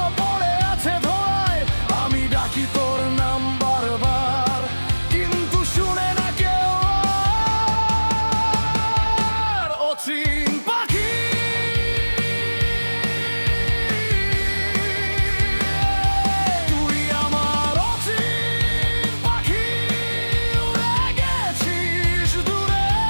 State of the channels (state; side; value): inverted; both; correlation -1.00